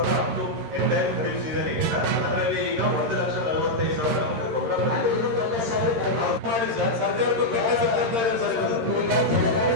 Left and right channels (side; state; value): left; late; 13 ms